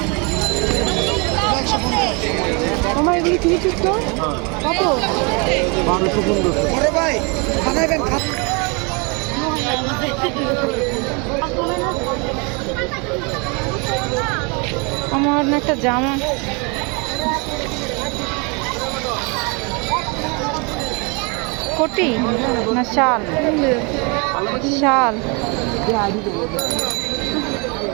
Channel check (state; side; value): quieter; left; 31.5 dB